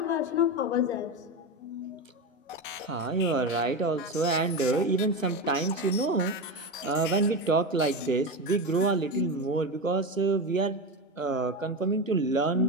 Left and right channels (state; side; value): normal; both; correlation 0.19